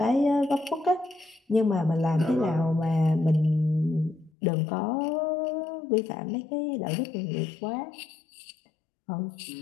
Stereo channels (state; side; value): drops out; right; at 4.3 s